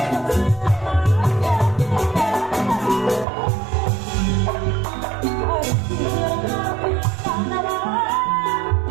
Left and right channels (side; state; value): left; drops out; at 3.2 s